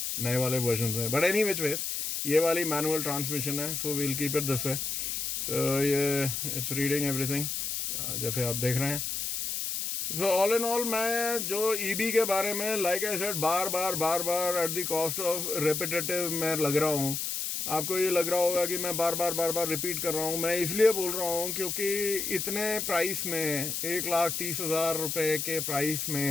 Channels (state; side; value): noise; left; hiss, 2 dB below the sound